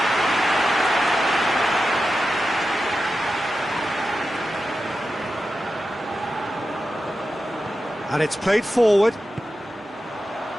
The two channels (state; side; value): normal; both; correlation 0.91